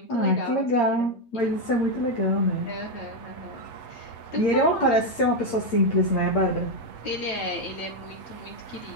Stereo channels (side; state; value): right; late; 8.0 ms